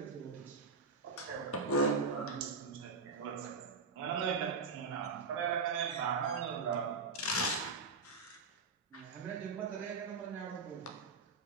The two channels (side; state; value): left; quieter; 4.4 dB